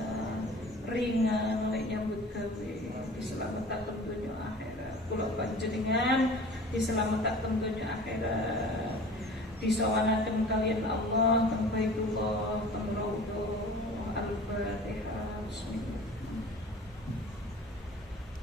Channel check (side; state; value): both; normal; correlation 0.43